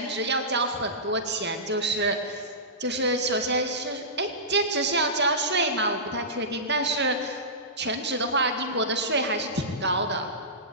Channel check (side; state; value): both; normal; correlation -0.19